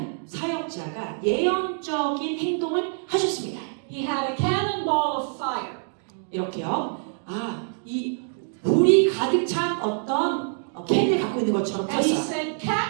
사역자가 예언적인 행동을 하셨습니다. He had a cannonball of fire. 이렇게요. 이 불이 가득 찬 어떤 캔을 갖고 있는 것처럼 And he 들었어요. said,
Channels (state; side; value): silent; left; 58 dB below the other